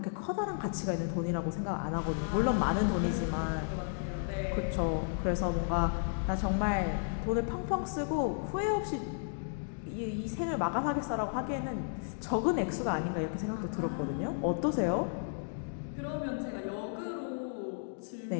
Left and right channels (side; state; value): right; silent; digital silence